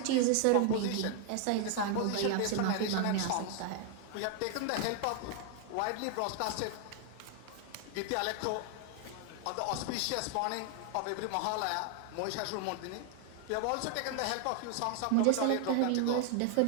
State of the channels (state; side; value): different; both; correlation 0.00